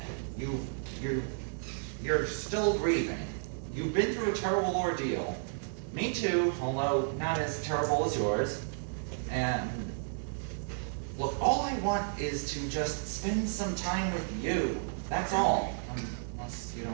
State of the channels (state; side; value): silent; left; digital silence